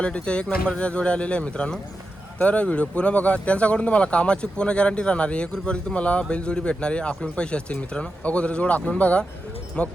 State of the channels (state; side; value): normal; both; correlation 0.89